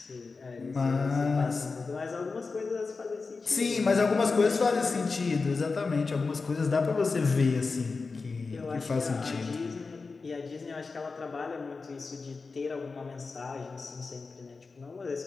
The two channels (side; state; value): right; quieter; 4.3 dB